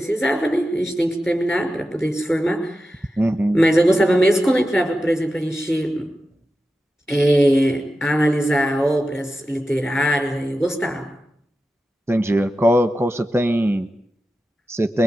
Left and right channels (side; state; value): both; normal; correlation 0.92